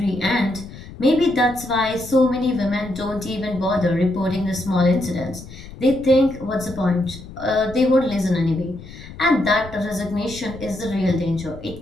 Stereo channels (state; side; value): noise; left; rumble, 15 dB below the sound